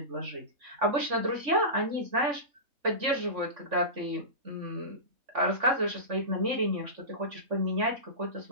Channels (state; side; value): late; left; 3.5 ms